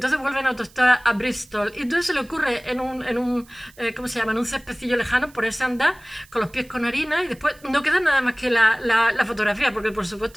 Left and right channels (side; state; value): right; noise; hiss, 26 dB below the sound